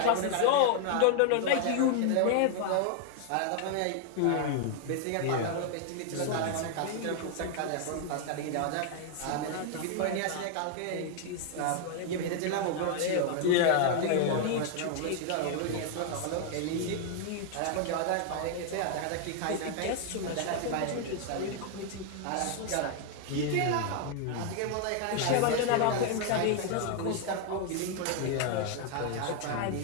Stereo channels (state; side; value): different; both; correlation 0.00